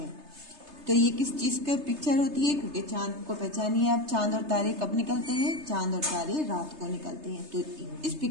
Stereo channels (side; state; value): left; late; 3.3 ms